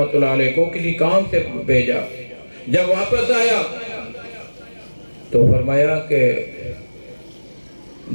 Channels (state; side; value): inverted; both; correlation -1.00